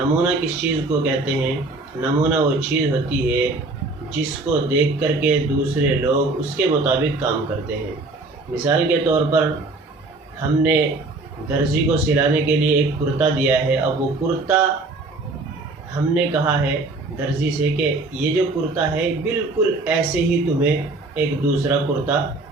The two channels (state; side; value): quieter; left; 3.3 dB